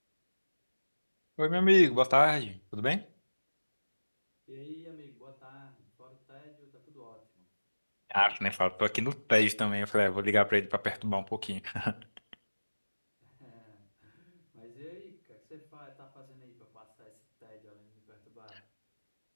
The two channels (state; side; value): inverted; both; correlation -1.00